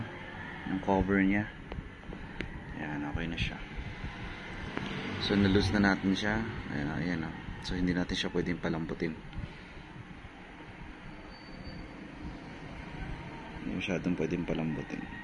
yung cover niya. Ayan, okay na siya. So nalus na natin siya. Ayan, ayan. So hindi natin siya pwedeng palambutin. Hindi masyadong pwedeng palambutin.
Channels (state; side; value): identical; both; correlation 1.00